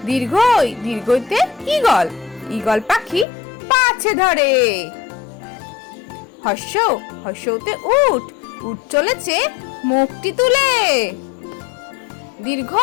দীর্ঘই দীর্ঘইতে ঈগল, ঈগল পাখি পাছে ধরে। হর্ষ হর্ষতে উট, উট চলেছে মুখটি তুলে। দীর্ঘ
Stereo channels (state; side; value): drops out; right; at 3.2 s